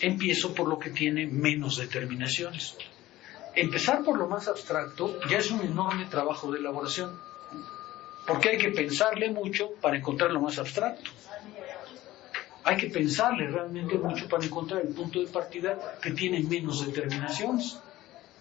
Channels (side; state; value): right; quieter; 16.2 dB